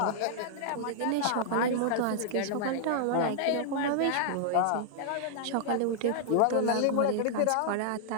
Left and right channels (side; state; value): both; different; correlation -0.01